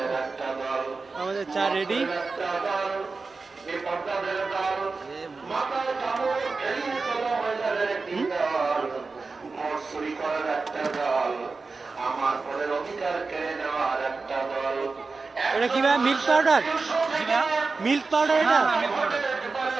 আমাদের চা রেডি। এটা কি ভাই, মিল্ক পাউডার? মিল্ক পাউডার, এটা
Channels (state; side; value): quieter; left; 4.1 dB